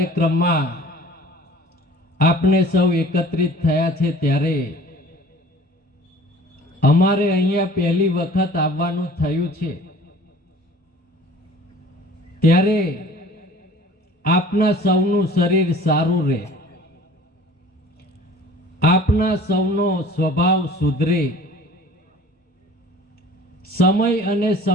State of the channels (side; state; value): both; normal; correlation 0.47